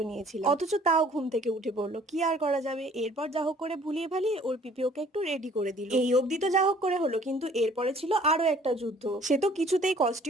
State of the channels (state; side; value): normal; both; correlation 0.55